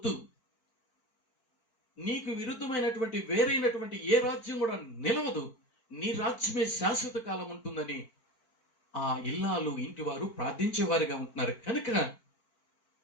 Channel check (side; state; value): right; late; 4.4 ms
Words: నీకు విరుద్ధమైనటువంటి వేరైనటువంటి ఏ రాజ్యం కూడా నిలవదు, నీ రాజ్యమే శాశ్వత కాలం ఉంటుందని ఆ ఇల్లాలు ఇంటి వారు ప్రార్థించేవారుగా ఉంటున్నారు. కనుక